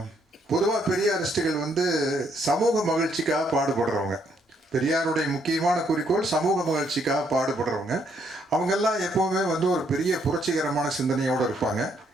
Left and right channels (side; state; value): both; normal; correlation 0.71